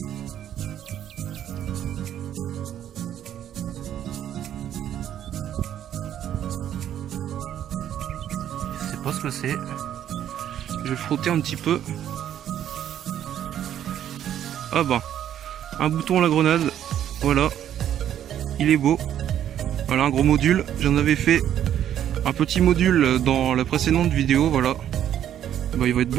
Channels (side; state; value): left; quieter; 10.5 dB